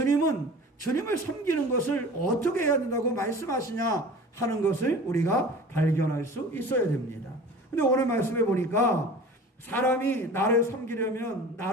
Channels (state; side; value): normal; both; correlation 0.40